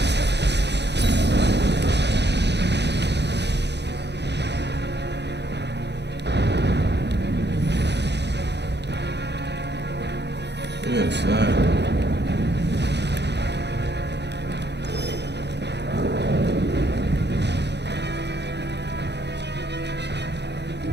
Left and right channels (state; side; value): late; left; 0.50 ms